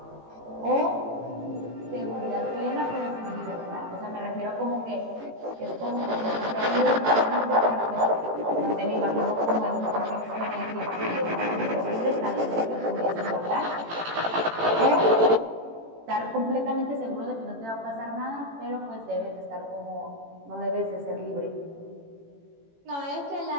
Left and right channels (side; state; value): left; late; 18 ms